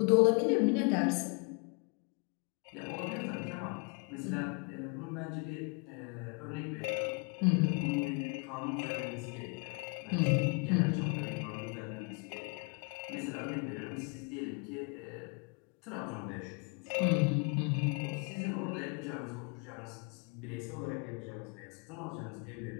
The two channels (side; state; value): right; quieter; 34.6 dB